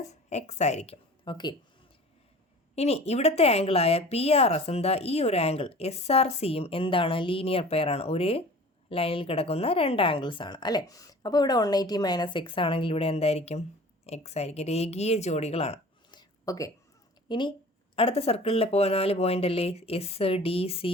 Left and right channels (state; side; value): normal; both; correlation 0.43